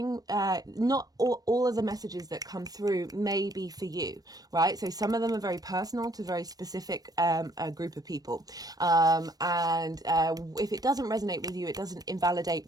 not all of the messages that come through may be for you, right? So some of them are very personal to very specific a group of people, and if it doesn't resonate with you, it doesn't invalidate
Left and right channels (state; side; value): late; left; 0.18 ms